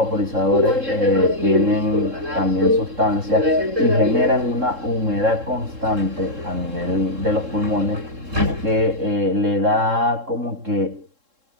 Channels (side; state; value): left; late; 3.7 ms